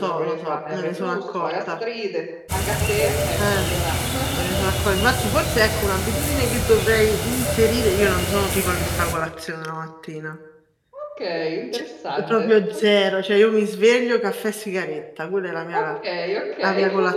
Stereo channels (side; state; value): both; identical; correlation 1.00